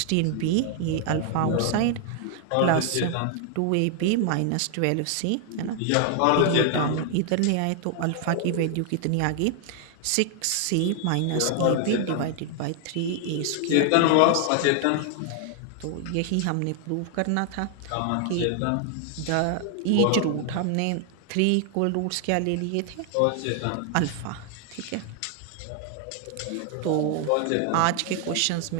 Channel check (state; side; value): different; both; correlation 0.00